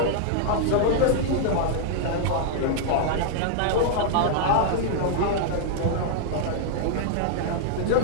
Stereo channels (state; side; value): different; both; correlation -0.01